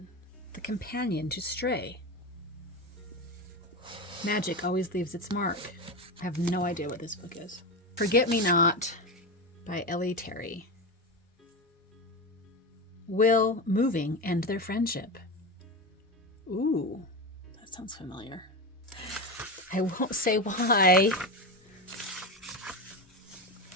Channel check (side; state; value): both; normal; correlation 0.19